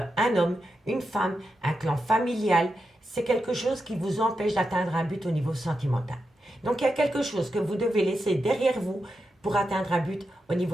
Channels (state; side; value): normal; both; correlation 0.88